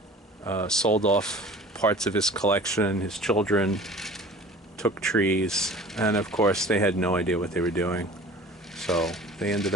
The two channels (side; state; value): both; normal; correlation 0.44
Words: sold off parts of his collection. His children took trees, and of course, they had no idea what they were doing. So they ended